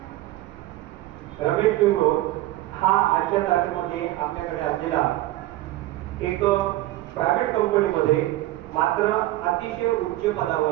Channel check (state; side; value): quieter; left; 16.5 dB